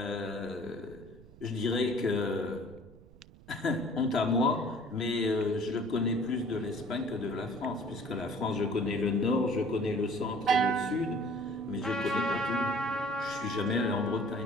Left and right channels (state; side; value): noise; right; rumble, 21 dB below the sound